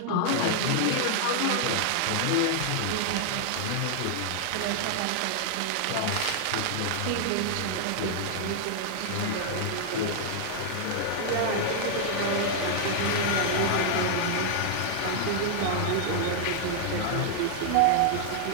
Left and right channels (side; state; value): both; different; correlation 0.00